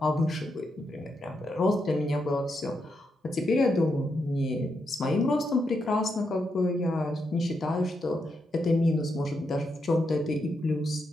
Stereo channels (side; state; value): both; normal; correlation 0.83